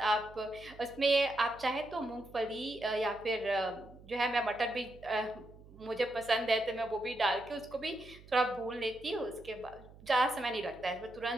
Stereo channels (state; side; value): noise; right; hum, 21 dB below the sound